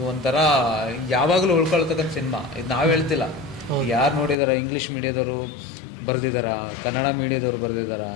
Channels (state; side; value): drops out; right; at 4.4 s